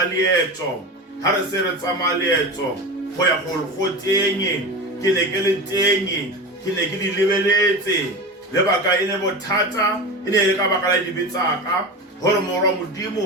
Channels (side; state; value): both; normal; correlation 0.27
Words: leetso ha re se re tsama leetso go ya go tenye ke ne ke le tenye ke ne ke di lebeletse lebaka ene bothata ene le ka baka la dibetsaka hore moro